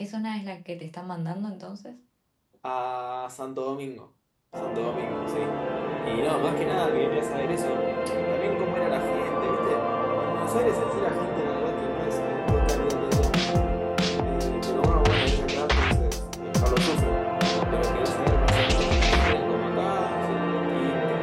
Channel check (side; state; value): both; identical; correlation 1.00